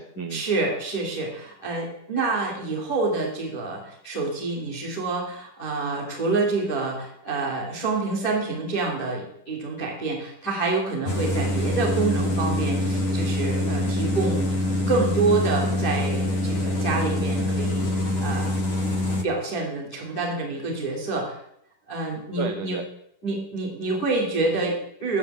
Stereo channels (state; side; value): late; right; 10 ms